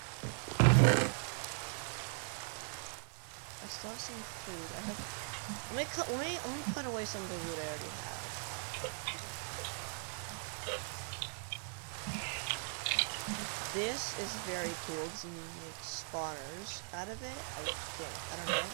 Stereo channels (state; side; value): silent; left; 51 dB below the other